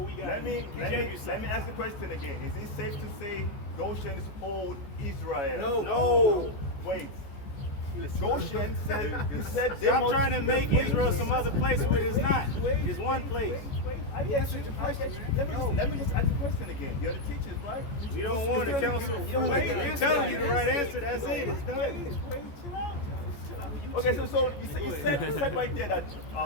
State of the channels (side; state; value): right; late; 14 ms